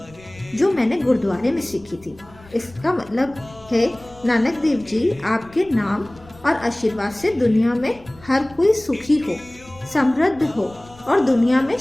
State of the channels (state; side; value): noise; left; rumble, 23 dB below the sound